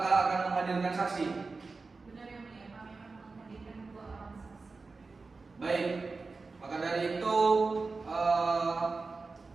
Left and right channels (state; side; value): quieter; left; 4.0 dB